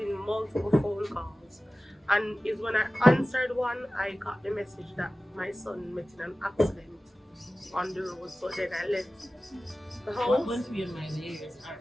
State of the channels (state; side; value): normal; both; correlation 0.96